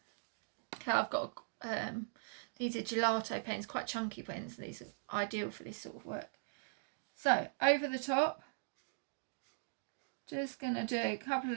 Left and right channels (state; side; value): silent; left; digital silence